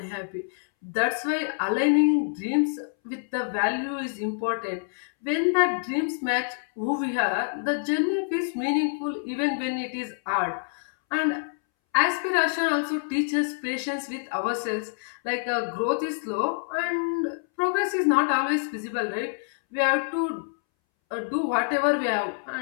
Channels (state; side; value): silent; right; 61 dB below the other